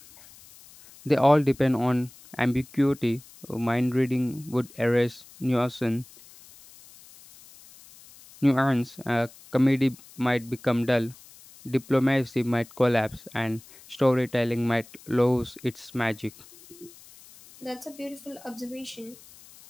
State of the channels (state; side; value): noise; left; hiss, 22 dB below the sound